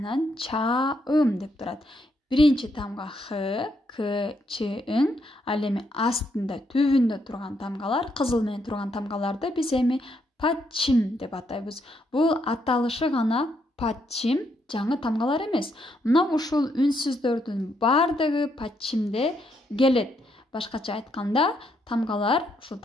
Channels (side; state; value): both; normal; correlation 0.76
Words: чаым деп турат. Биринчи тамга х, к, ч, ң, ал эми астында, түбүндө турган тамгалар, кызыл менен турган тамгаларды биз эми паччим деп атайбыз. Бул аталышы гана паччим, жаңы тамгалар эмес. Мына ушул үнсүздөрдүн бардыгы паччимде келет. Башкача айтканда, ушул